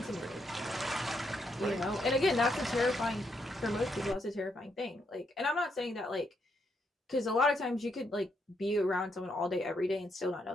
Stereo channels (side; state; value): both; normal; correlation 0.78